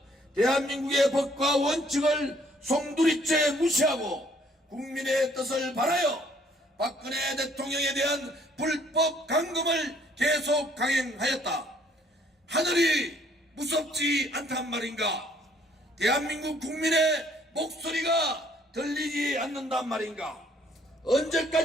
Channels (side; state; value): both; normal; correlation 0.63